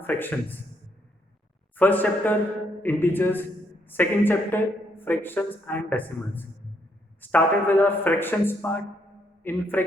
fractions. First chapter integers, second chapter fractions and decimals. Started with our fractions part. In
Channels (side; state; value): both; normal; correlation 0.73